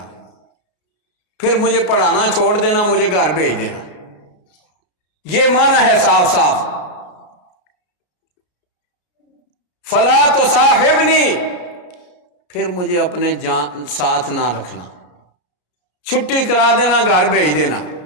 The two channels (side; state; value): right; late; 33 ms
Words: پھر مجھے پڑھانا چھوڑ دینا، مجھے گھر بھیج دینا۔ یہ معنی ہے صاف صاف۔ فلا تصاحبنی، پھر مجھے اپنے ساتھ نہ رکھنا، چھٹی کرا دینا، گھر بھیج دینا۔